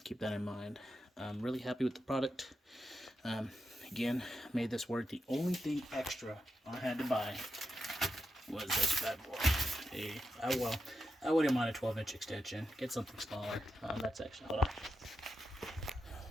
keep that in mind. I'm really happy with the product. Again, made this work. The only thing extra I had to buy was this bad boy. I wouldn't mind a 12-inch extension. Get something smaller. That's actually, hold on.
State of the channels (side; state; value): both; normal; correlation 0.88